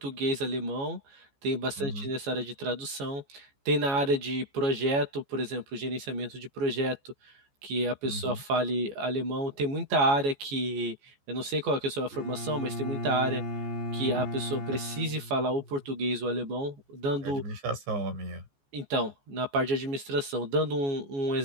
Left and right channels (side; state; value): left; late; 14 ms